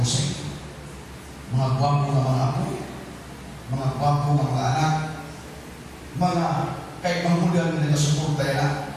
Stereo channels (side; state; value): both; identical; correlation 1.00